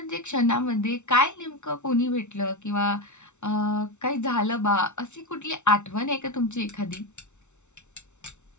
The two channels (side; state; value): right; late; 0.83 ms